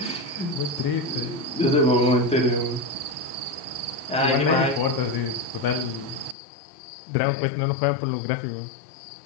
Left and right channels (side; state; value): right; drops out; at 6.4 s